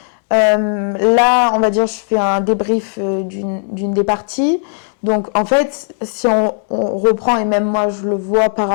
Là, on va dire, je fais un débrief d'une des parties. Donc, en fait, si on reprend, et même moi, je le vois par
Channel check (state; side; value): silent; right; digital silence